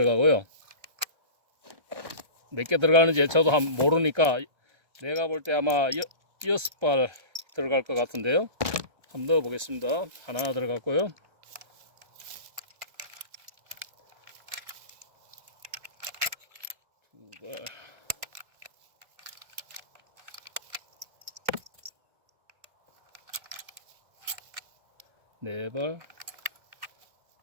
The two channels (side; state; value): left; late; 1.3 ms